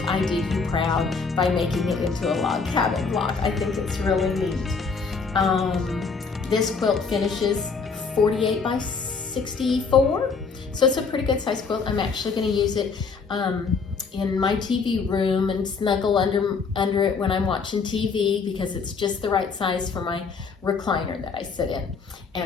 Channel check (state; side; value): quieter; right; 5.0 dB